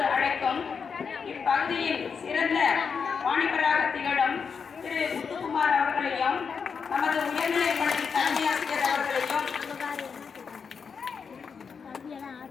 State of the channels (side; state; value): right; quieter; 6.0 dB